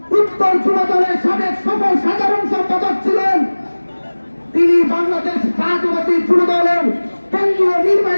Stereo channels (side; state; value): both; inverted; correlation -1.00